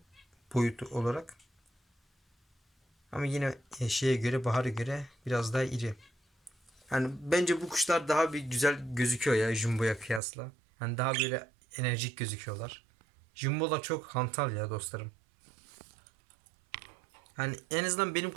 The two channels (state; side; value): drops out; left; at 10.2 s